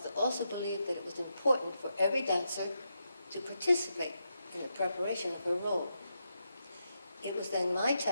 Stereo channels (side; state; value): both; inverted; correlation -0.84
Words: also believed that it was important for every dancer to participate in the preparation of her role. It was then my